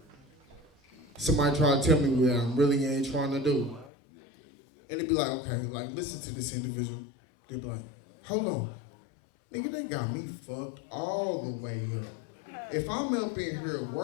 somebody try to tell me what I really ain't trying to do. And they be like, okay, like, listen to this individual. They be like, hold on. Nigga, they got me fucked all the way up. If I'm up in here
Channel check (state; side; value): drops out; right; at 3.9 s